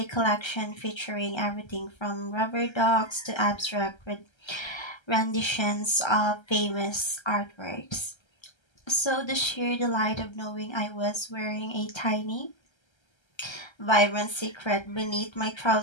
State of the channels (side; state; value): right; late; 1.3 ms